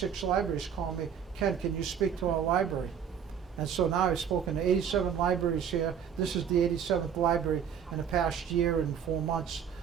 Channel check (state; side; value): quieter; left; 7.9 dB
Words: libraries call me, Ken, can you speak to our library? And so now I've spoken to 87 libraries here. This is the 87th library in the past year and 4 months